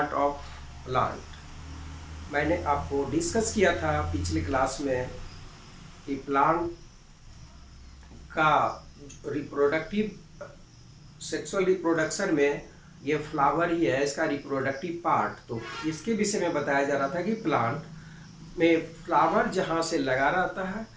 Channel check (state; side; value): identical; both; correlation 1.00